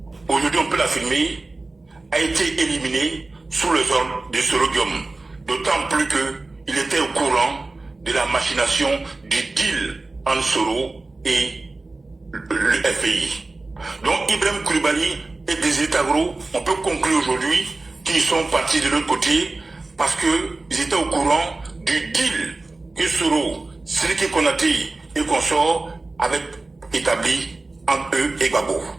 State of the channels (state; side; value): quieter; left; 3.3 dB